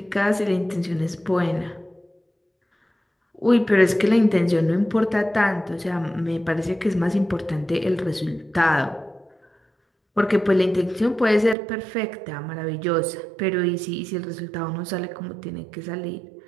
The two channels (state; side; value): drops out; left; at 11.6 s